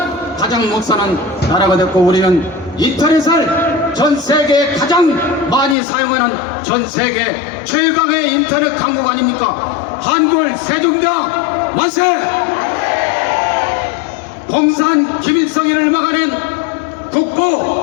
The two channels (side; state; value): right; drops out; at 5.8 s